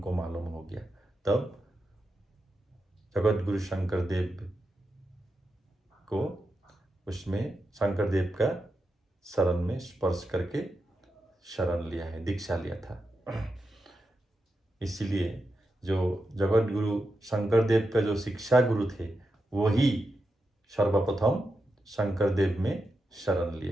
मालूम हो गया। तब जगत गुरु शंकरदेव को उसमें शंकरदेव का शरण में स्पर्श करके शरण लिया है, दीक्षा लिया था। इसीलिए जो जगत गुरु शंकरदेव का जो शिक्षा गुरु थे वही सर्वप्रथम शंकरदेव में शरण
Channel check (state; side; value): normal; both; correlation 0.87